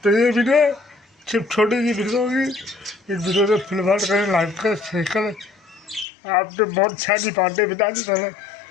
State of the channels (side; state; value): right; drops out; at 6.1 s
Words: ये वीडियो सिर्फ छोटी सी वीडियो होगी। इस वीडियो को फिलहाल करें, लाइक करें, शेयर करें। आपने बहुत सारी बातें बता दी पहले